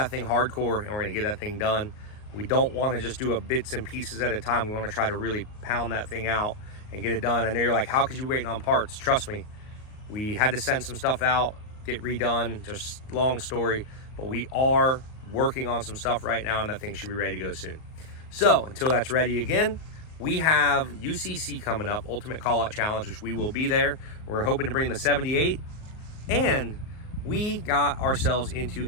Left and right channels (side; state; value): right; late; 38 ms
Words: thing hardcore, and we're going to get that thing done. We don't want to just do a bits and pieces at a time. We want to try to really pound that thing out and get it done. I know you're like, how could you waiting on parts? Trust me, we had to send some stuff out, get redone, just long story, but we are working on some stuff right now, and that thing should be ready to go soon. So until that's ready again, we have UCC coming up, Ultimate Call Out Challenge, which we will be there. We're hoping to bring the 78, and we got ourselves into